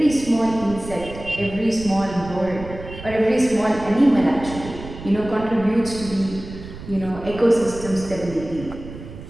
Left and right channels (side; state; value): right; noise; rumble, 13 dB below the sound